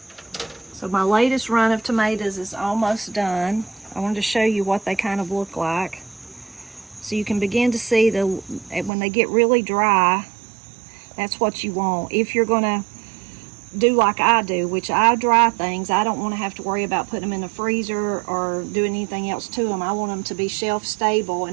So my latest run of tomatoes is almost done. I wanted to show you what they kind of look like. So you can begin to see when they get really dry, that's what you want. If you're gonna do like I do, which I dry things, I don't want to have to worry about putting them in the freezer or doing anything else to them. I want them to be shelf stable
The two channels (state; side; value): drops out; left; at 8.9 s